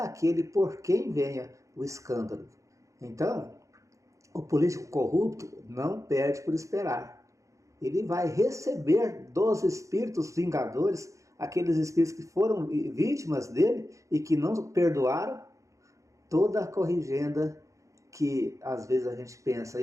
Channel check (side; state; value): left; late; 0.15 ms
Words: por quem venha o escândalo. Então, o político corrupto não perde por esperar. Ele vai receber dos espíritos vingadores, aqueles espíritos que foram vítimas dele e que não perdoaram, toda a corrigenda que às vezes a gente pensa